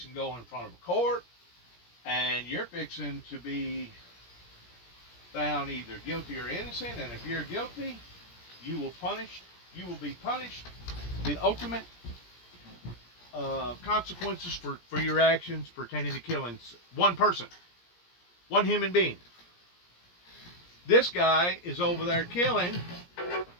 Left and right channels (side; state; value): right; late; 17 ms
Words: to go in front of a court, and you're fixing to be found either guilty or innocent. And if you're guilty, you will be punished. The ultimate consequences for your actions pertaining to killing one person, one human being. This guy is over there killing,